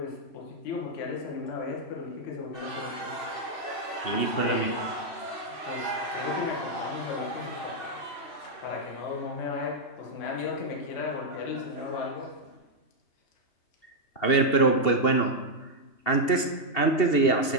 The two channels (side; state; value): right; late; 2.7 ms